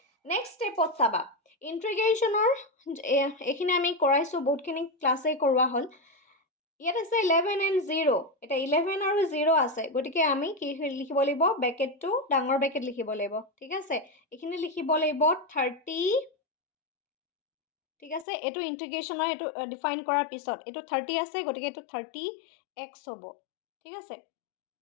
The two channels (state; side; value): drops out; right; at 18.2 s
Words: নেক্সট স্টেপত চাবা ইন্টিগ্ৰেশনৰ এখিনি আমি কৰাইছো বহুতখিনি ক্লাসে কৰোৱা হল ইয়াত আছে 11 and 0 এটা 11 আৰু 0 আছে গটিকে আমি কি লিখিব লাগিব ব্ৰ্যাকেটটো ডাঙৰ ব্র্যাকেট লিখিব লাগিব ঠিক আছে এখিনি লিখিব লাগিব 30 ঠিক আছে এটো ইন্টিগ্ৰেশনৰ এটো ডিফাইন কৰাৰ পিছত এটো 30 আছে গটিকে এটো 30x হ'ব ঠিক আছে